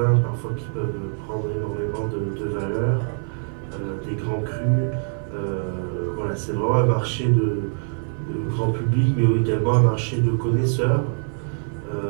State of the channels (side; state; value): left; silent; 56 dB below the other